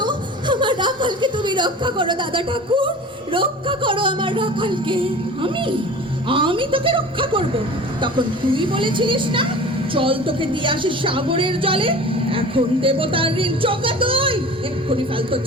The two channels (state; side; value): normal; both; correlation 0.39